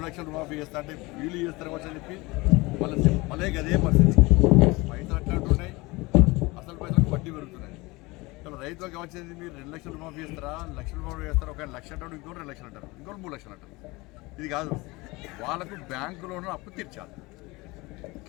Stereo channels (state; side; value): quieter; right; 23.1 dB